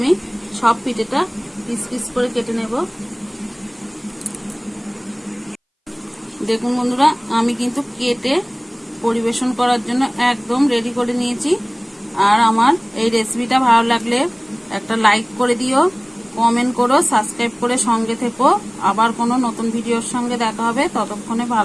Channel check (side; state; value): both; identical; correlation 1.00